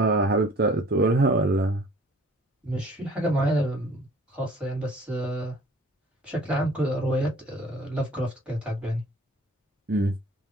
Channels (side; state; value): both; normal; correlation 0.51